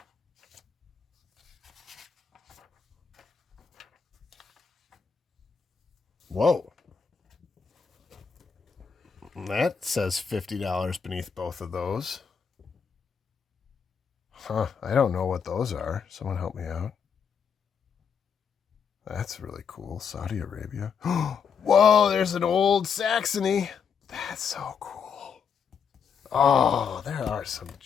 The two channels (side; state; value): right; quieter; 6.6 dB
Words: Whoa. That says $50 beneath both of those. Huh, I don't know what those are. Someone help me out. That's really cool. Saudi Arabia. Whoa, there's an old Saxony. That's so cool. Oh, there are some